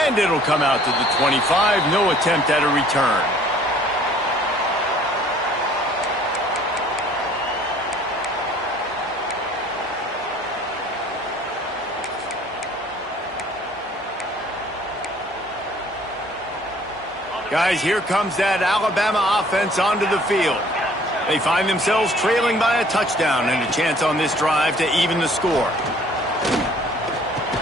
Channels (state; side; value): normal; both; correlation 0.56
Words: And it'll come out to the 25. No attempt at a return. Guys, here comes that Alabama offense onto the field. They find themselves trailing by a touchdown and a chance on this drive to even the score.